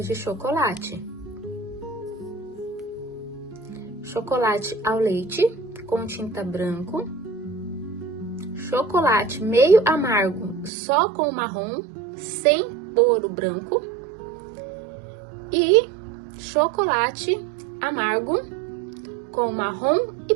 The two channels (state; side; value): drops out; left; at 10.7 s